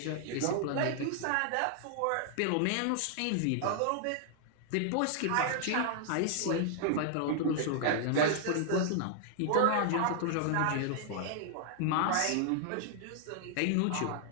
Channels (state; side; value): different; both; correlation 0.00